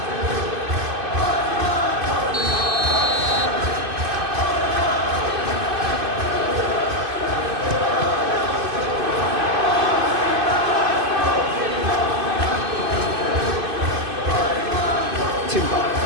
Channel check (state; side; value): late; left; 2.5 ms